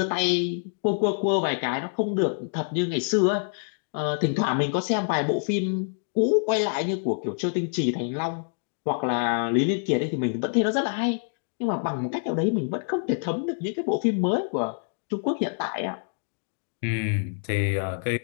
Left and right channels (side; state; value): right; silent; digital silence